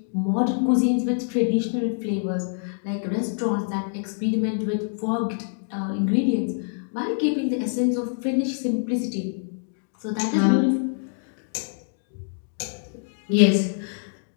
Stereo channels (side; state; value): right; silent; digital silence